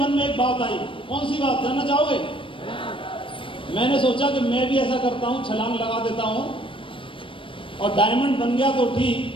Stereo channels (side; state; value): right; late; 0.25 ms